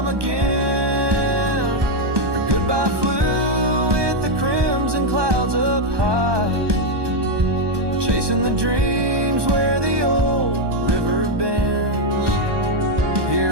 again. Her goodbye flew with the crimson clouds up high, chasing the dreams where the old river bends.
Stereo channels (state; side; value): late; left; 1.2 ms